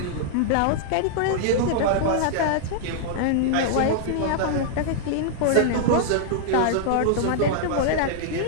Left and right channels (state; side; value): different; both; correlation -0.01